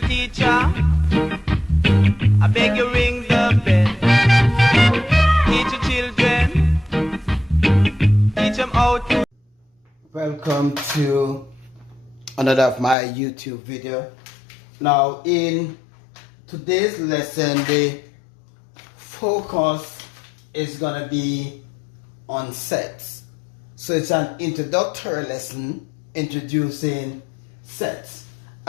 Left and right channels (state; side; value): drops out; right; at 13.0 s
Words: teacher, I beg you ring the bell. Teach your children, teach them how to. Welcome to another of my YouTube video. Now in today's lesson, the focus is gonna be on sets. So it's an introductory lesson introducing sets.